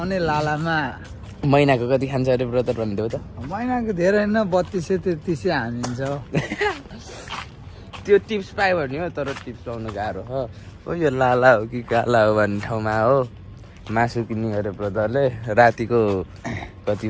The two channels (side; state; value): both; identical; correlation 1.00